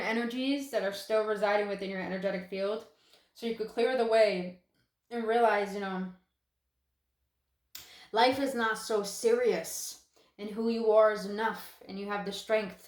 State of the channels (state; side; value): identical; both; correlation 1.00